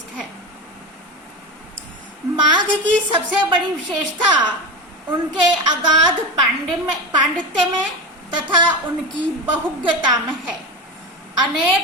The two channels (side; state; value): both; normal; correlation 0.22